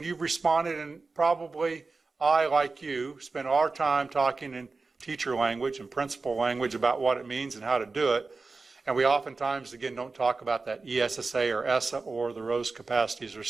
you've responded, and probably I, like you, spent our time talking in teacher language and principal language about what it means and how to do it. And we oftentimes, again, don't talk about that ESSA or ESSA or the Rose capacities or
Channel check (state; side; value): quieter; left; 3.9 dB